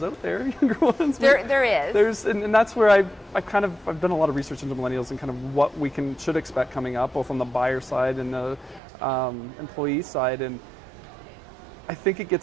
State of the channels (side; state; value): left; drops out; at 8.8 s